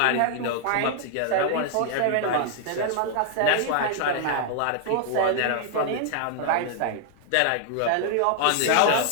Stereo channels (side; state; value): both; different; correlation 0.00